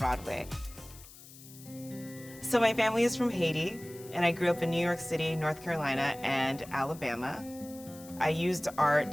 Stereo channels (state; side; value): noise; left; hiss, 19 dB below the sound